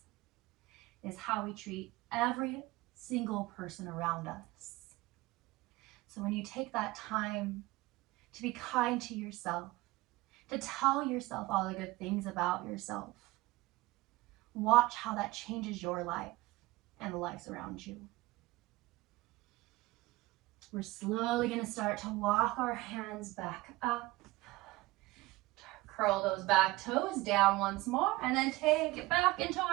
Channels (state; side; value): quieter; left; 19.9 dB